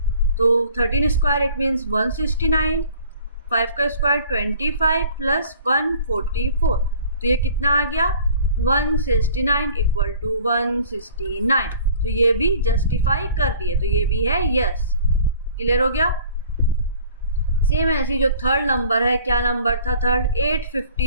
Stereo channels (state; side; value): inverted; both; correlation -0.49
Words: तो 13 स्क्वायर इट मीन्स 169, 5 का स्क्वायर 25 प्लस 144. तो ये कितना आ गया? 169 इक्वल टू 169. तो ये भी जस्टिफाई कर रही है, तो ये भी है यस. क्लियर हो गया? सेम ऐसी जो थर्ड नंबर है, क्या नंबर था थर्ड? 8,